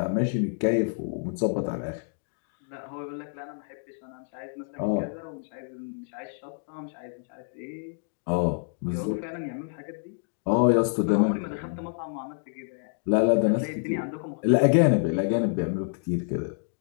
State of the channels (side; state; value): right; silent; digital silence